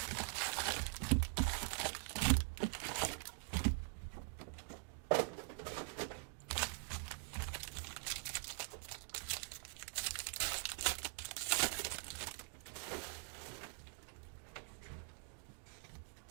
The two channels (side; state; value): left; quieter; 37.9 dB